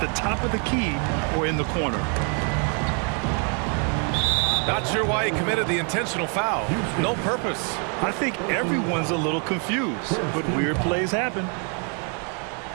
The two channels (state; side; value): quieter; left; 39.6 dB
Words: top of the key or in the corner. Not sure why he committed the intentional foul. No purpose. I think everyone's a little confused, but weird plays happen.